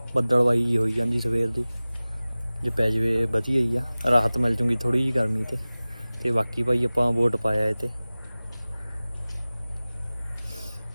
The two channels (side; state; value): both; inverted; correlation -0.98